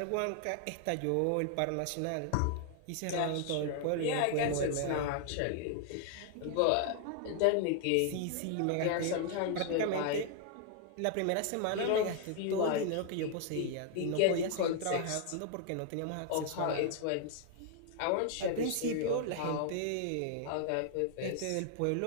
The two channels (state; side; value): different; both; correlation 0.00